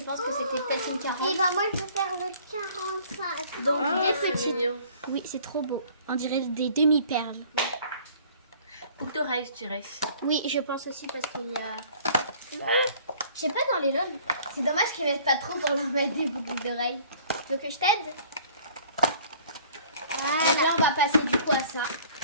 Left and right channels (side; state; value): both; inverted; correlation -0.53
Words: pense que c'était peut-être une 40. Et bah moi je vais faire le 45. Donc, Ah, des c'est petites. mignon. Oui, c'est trop beau. On dirait des demi-perles. Boucle d'oreille, je dirais. Oui, je pense aussi parce qu'il y a. Je sais pas dans les loges. C'est dommage qu'ils mettent pas trop pour leur mettre des boucles d'oreilles. Donc je t'aide. Donc là, on va passer du coup à ça.